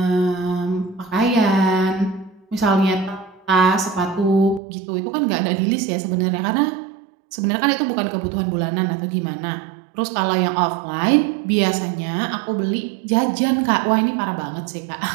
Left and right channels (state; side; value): drops out; left; at 4.6 s